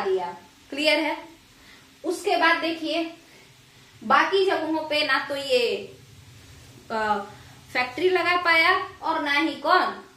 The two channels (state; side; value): identical; both; correlation 1.00